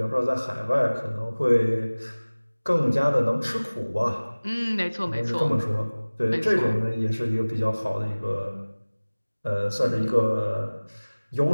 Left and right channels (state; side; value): inverted; both; correlation -1.00